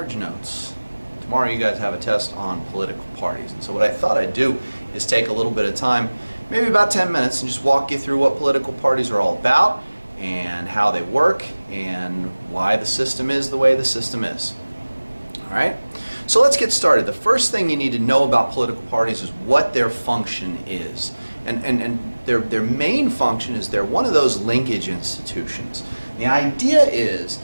Notes. Tomorrow you guys have a test on political parties, and so what I thought I'd do is take a little bit of time, maybe about 10 minutes, and just walk you through what political parties are all about and how they work and why the system is the way the system is. Alright, so let's get started. The first thing you need to know about political parties is what their function is. And their main function is they're one of those linkage institutions. The idea is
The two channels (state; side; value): inverted; both; correlation -1.00